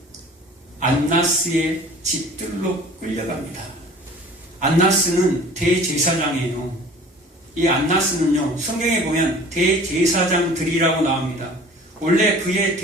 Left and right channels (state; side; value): normal; both; correlation 0.46